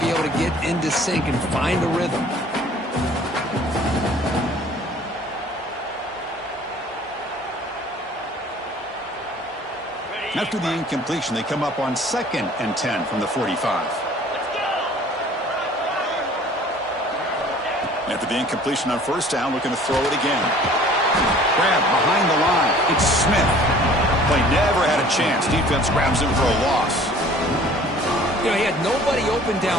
be able to get into sync and find a rhythm. After the incompletion, they come up on 2nd and 10 from the 45. After the incompletion on first down, looking to throw it again. Grab behind the line. It's Smith. Play never had a chance. Defense grabs him for a loss. You know, he had nobody open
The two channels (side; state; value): both; normal; correlation 0.51